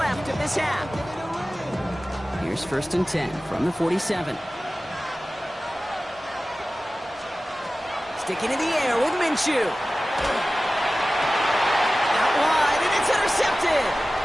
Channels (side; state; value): both; normal; correlation 0.96